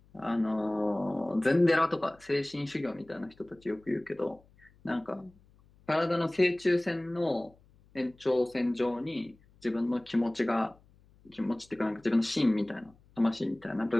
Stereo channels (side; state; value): left; noise; hum, 29 dB below the sound